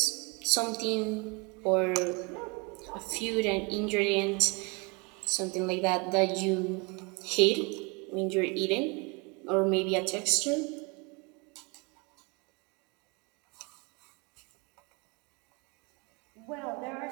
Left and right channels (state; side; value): quieter; left; 28.9 dB